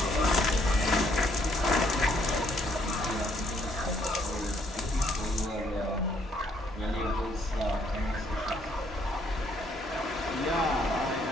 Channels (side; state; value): both; normal; correlation 0.68